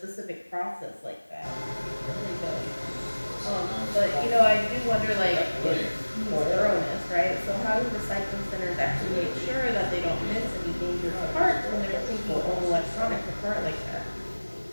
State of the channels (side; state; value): both; inverted; correlation -1.00